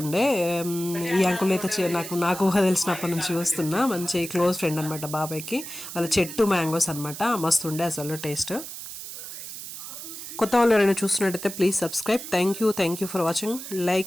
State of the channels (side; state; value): right; noise; hiss, 10 dB below the sound